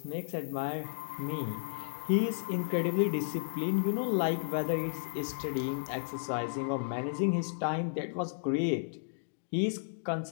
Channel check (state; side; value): silent; right; digital silence